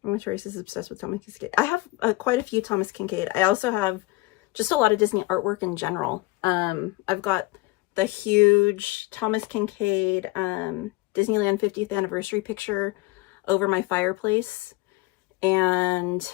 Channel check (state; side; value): quieter; right; 20.9 dB